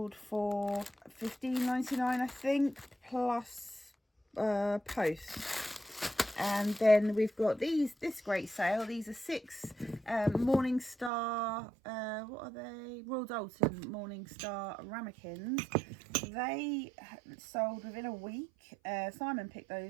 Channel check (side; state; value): left; drops out; at 11.1 s